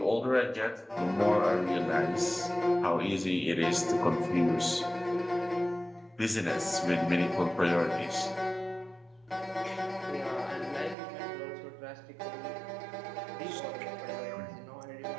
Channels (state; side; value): drops out; left; at 11.0 s